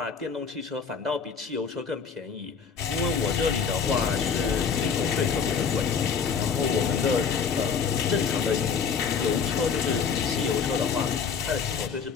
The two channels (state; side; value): quieter; right; 6.2 dB